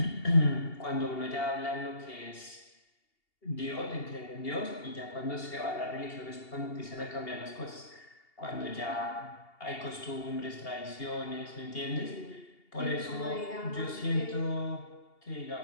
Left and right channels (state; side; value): late; right; 2.8 ms